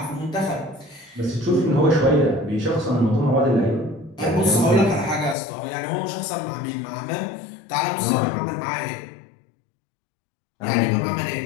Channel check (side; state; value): right; drops out; at 5.4 s